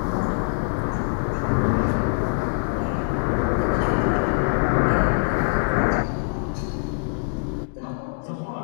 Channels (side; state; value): right; silent; digital silence